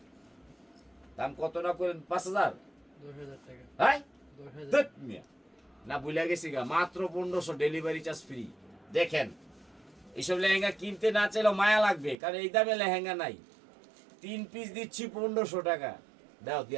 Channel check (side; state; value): left; drops out; at 12.2 s